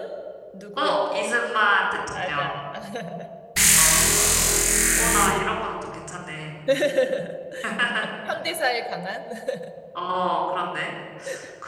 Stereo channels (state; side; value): identical; both; correlation 1.00